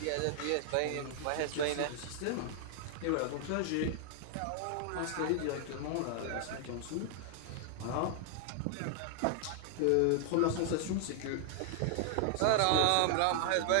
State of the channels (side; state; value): both; different; correlation 0.00